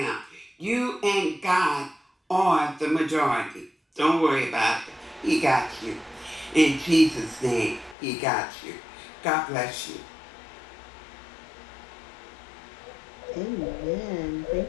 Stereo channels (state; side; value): drops out; right; at 8.0 s